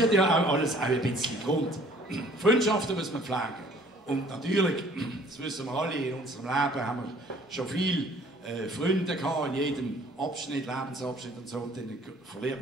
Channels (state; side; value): normal; both; correlation 0.55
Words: hat ja auch alles auch ein bisschen Grund. Freundschaften müssen wir pflegen. Und natürlich, das wissen wir alle, in unserem Leben haben wir schon viele Freunde gehabt, in jedem Abschnitt, Lebensabschnitt und so. Und dann verliert